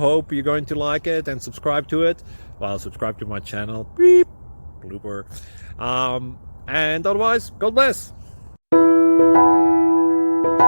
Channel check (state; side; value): inverted; both; correlation -1.00